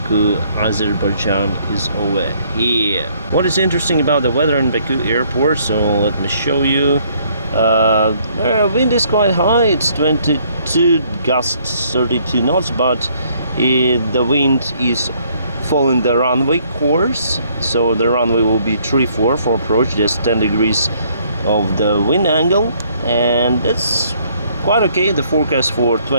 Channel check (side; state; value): both; inverted; correlation -0.65